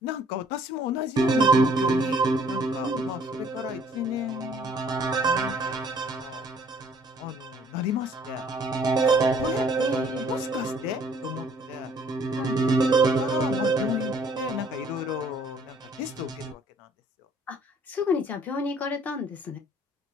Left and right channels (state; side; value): normal; both; correlation 0.60